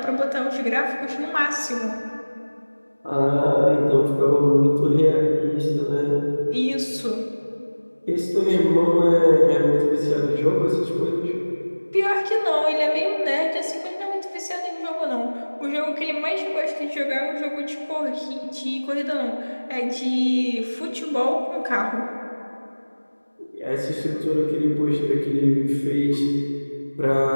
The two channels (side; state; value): both; inverted; correlation -1.00